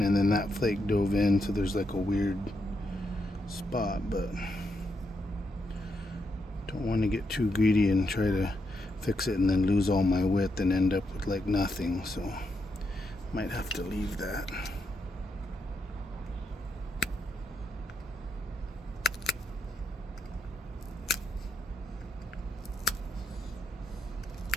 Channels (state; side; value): normal; both; correlation 0.81